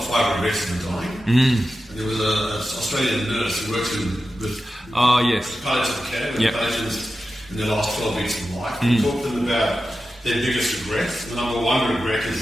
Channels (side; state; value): both; normal; correlation 0.92